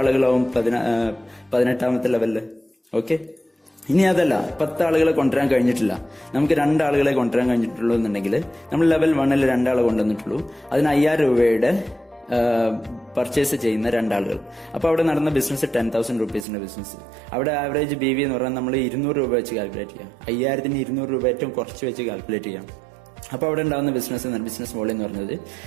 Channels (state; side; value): drops out; left; at 16.4 s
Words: ആളുകളാവും 18ാമത്തെ ലെവലിൽ? ഓക്കെ. ഇനി അതല്ല, 10 ആളുകളെ കൊണ്ടുവരാൻ കഴിഞ്ഞിട്ടില്ല, നമുക്ക് 2 ആളുകളെ കൊണ്ടുവരാൻ കഴിഞ്ഞിട്ടുള്ളൂ എന്നുണ്ടെങ്കിൽ നമ്മൾ ലെവൽ 1ൽ 2 ആളെ കൊണ്ടുവന്നിട്ടുള്ളൂ. അതിന് 5000 രൂപയുടെ പർച്ചേസ് ചെയ്യുന്ന 2 ആളുകൾ. അപ്പൊ അവിടെ നടന്ന ബിസിനസ് 10,000 റുപ്പീസിന്റെ ബിസിനസ്. അവിടെ ആവറേജ് BV എന്ന് പറഞ്ഞാൽ നമ്മൾ 200 രൂപ വെച്ച് കാൽക്കുലേറ്റ് ചെയ്യാം. 5000ന് 200 രൂപ ഏറ്റവും കുറച്ച് വെച്ച് കാൽക്കുലേറ്റ് ചെയ്യാം. അപ്പൊ അവിടെ ഉണ്ടാകുന്ന ബിസിനസ് വോളിയം എന്ന് പറഞ്ഞത്